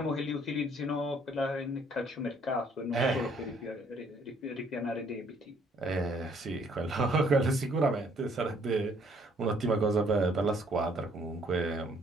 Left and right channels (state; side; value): normal; both; correlation 0.63